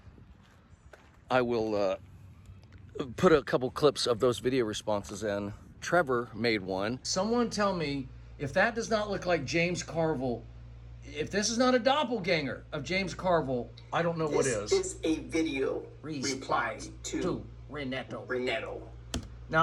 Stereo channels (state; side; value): identical; both; correlation 1.00